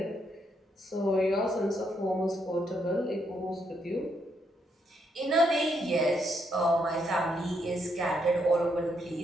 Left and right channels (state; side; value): normal; both; correlation 0.76